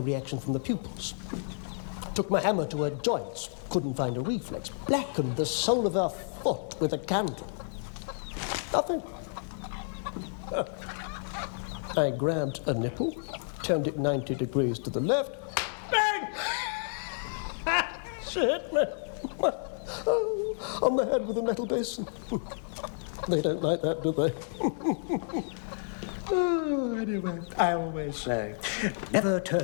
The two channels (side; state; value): right; silent; digital silence